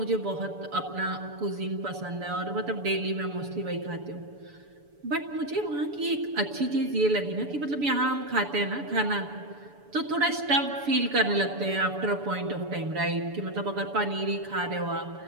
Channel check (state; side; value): late; left; 7.0 ms